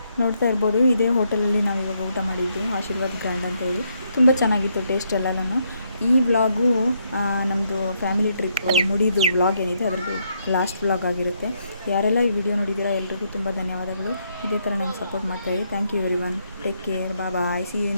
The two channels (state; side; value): inverted; both; correlation -0.76